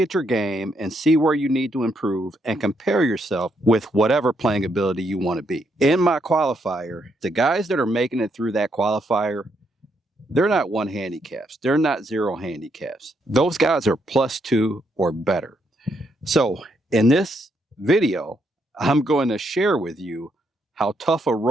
your game and see where you need to improve and compare yourself with whatever playing ability you want to be. In my qualifier, the guys that are making it through that qualifier, they're not 1 handicaps. They're not 0 handicaps. Those guys are +2 or better. So in this video, I'm going to share with you how tough a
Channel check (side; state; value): both; normal; correlation 0.76